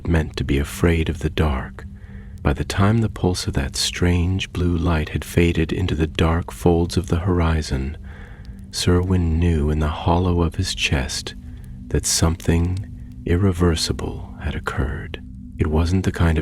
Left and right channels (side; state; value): both; identical; correlation 1.00